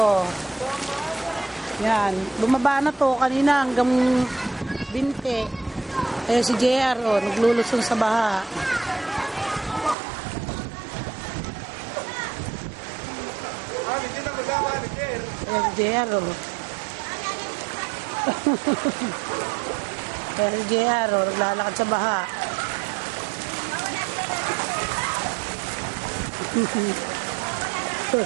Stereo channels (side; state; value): left; drops out; at 10.0 s